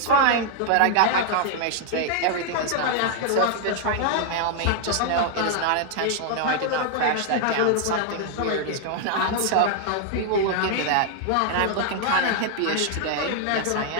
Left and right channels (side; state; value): both; different; correlation 0.00